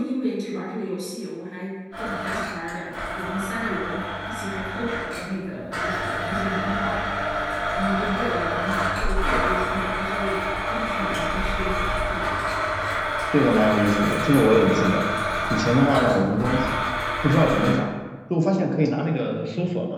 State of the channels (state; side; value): identical; both; correlation 1.00